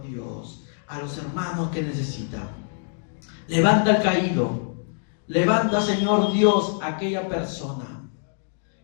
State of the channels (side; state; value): right; silent; digital silence